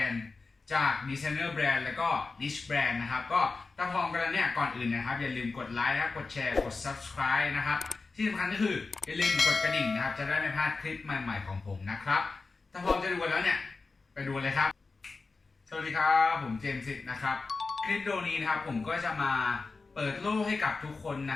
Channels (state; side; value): quieter; right; 4.0 dB